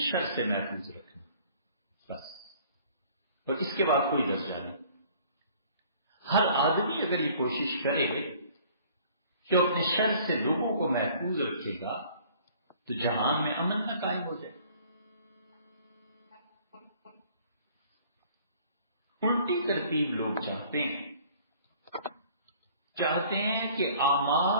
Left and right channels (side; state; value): both; inverted; correlation -0.54